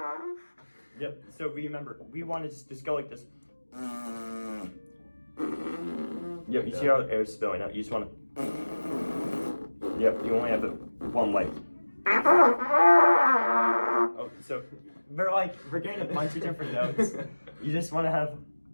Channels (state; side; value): inverted; both; correlation -1.00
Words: Yep. So remember, we want to just go like this. Yep. You see how the air is spilling out? You just want to. Yep. You only have one way. Oh, so we're getting a bunch of different notes. You just want to have